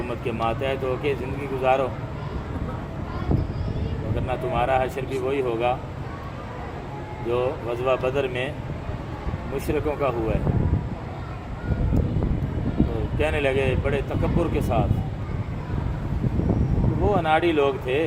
کے ماتحت ہو کے زندگی گزارو، ورنہ تمہارا حشر بھی وہی ہوگا جو غزوہ بدر میں مشرکوں کا ہوا ہے۔ تو کہنے لگے بڑے تکبر کے ساتھ، وہ اناڑی لوگ تھے،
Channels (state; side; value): identical; both; correlation 1.00